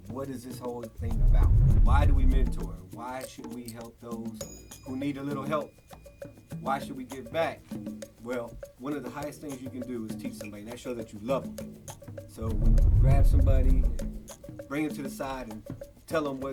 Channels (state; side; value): identical; both; correlation 1.00